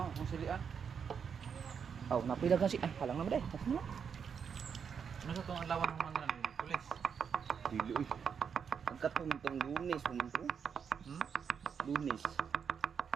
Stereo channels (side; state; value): left; quieter; 6.9 dB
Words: kung silian. Oh, napilagan si. Ay, halang naman day. Ano sa itong alawan ng mga namin? Pulis. Dili, uy. Ang katong itong lunes, pumunto. Lunes.